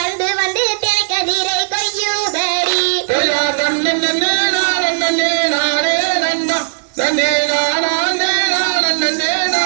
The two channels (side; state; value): left; silent; 63 dB below the other